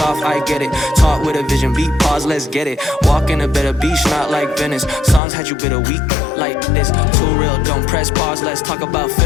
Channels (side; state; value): right; drops out; at 5.2 s